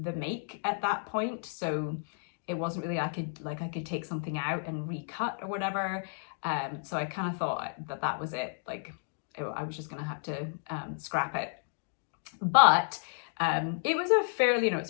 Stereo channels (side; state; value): right; silent; digital silence